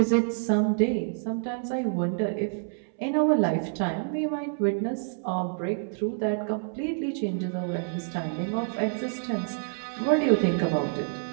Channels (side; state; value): left; silent; 60 dB below the other